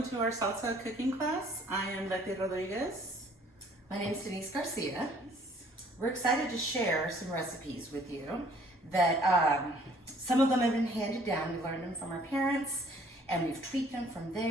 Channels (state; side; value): normal; both; correlation 0.58